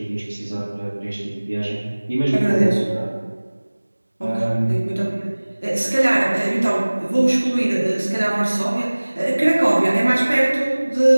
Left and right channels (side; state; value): both; inverted; correlation -1.00